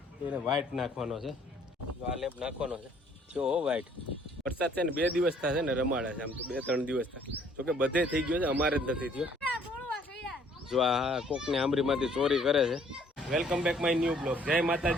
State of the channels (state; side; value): normal; both; correlation 0.60